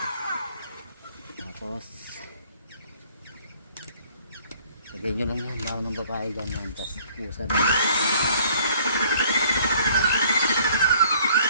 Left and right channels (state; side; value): inverted; both; correlation -0.58